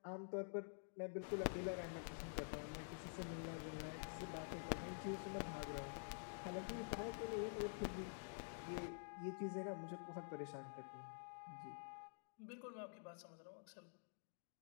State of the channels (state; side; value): silent; right; digital silence